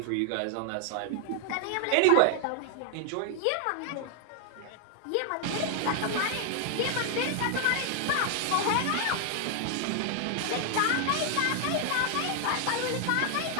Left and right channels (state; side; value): different; both; correlation 0.00